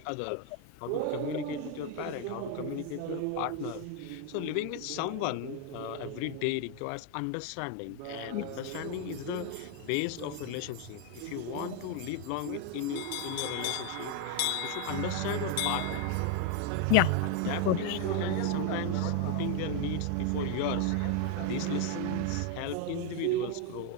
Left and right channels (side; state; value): both; different; correlation 0.01